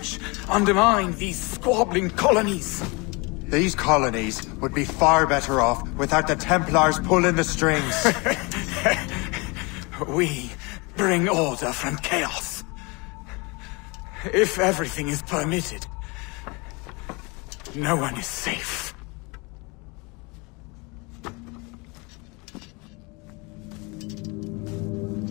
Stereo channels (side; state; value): right; quieter; 28.1 dB